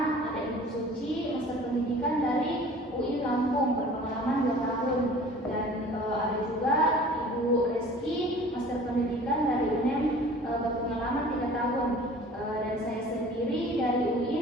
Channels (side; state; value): both; normal; correlation 0.46